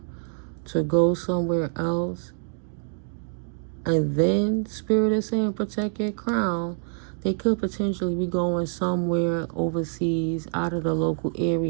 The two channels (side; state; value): left; silent; digital silence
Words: to go somewhere else, and then Spirit is saying protect your crown, they could potentially be going somewhere overseas, out of the local